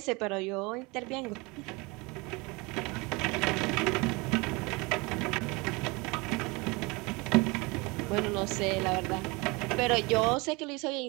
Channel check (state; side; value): quieter; left; 26.1 dB